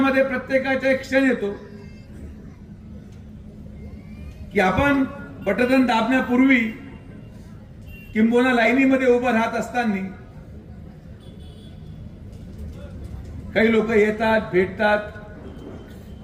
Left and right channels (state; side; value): identical; both; correlation 1.00